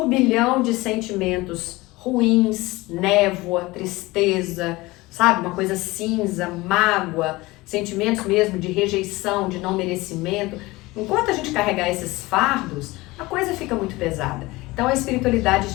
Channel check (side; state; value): right; quieter; 20.9 dB